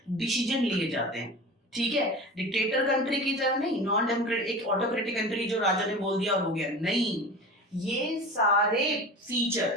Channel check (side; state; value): both; normal; correlation 0.34